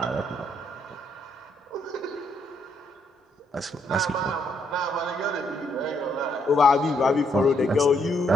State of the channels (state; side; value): normal; both; correlation 0.73